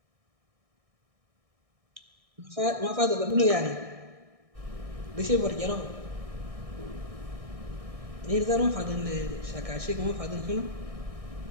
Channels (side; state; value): left; late; 1.6 ms